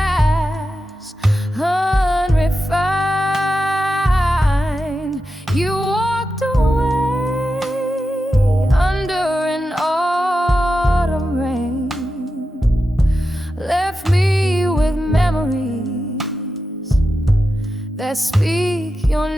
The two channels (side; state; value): both; normal; correlation 0.90